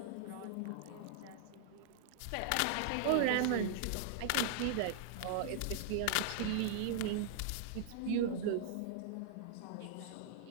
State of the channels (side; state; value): both; different; correlation -0.01